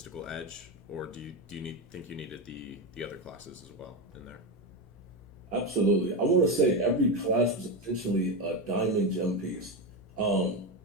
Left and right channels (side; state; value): both; normal; correlation 0.13